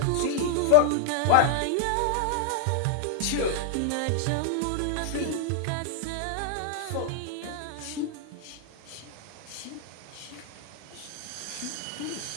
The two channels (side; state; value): both; different; correlation -0.01